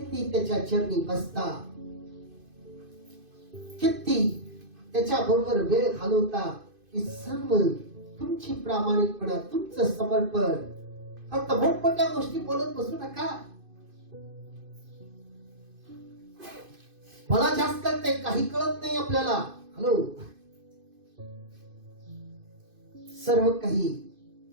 त्याच्या चरणी बसता, किती त्याच्या बरोबर वेळ घालवता, ही सर्व तुमची प्रामाणिकपणा, तुमचं समर्पण. फक्त मोठमोठ्या गोष्टी बोलत बसू नका. मला जास्त कळते, काही कळत नाही आपल्याला. हॅलो, सर्व काही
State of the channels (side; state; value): left; late; 2.5 ms